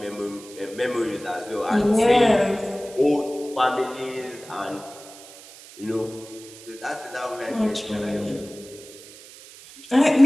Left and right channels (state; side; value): noise; right; hiss, 18 dB below the sound